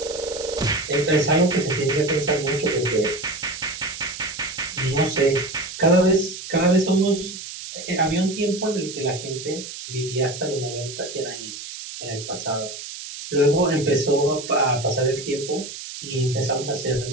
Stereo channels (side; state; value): right; noise; hiss, 10 dB below the sound